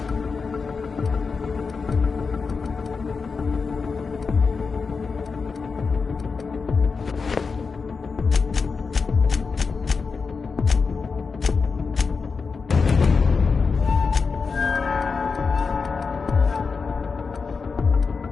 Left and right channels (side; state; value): right; quieter; 4.9 dB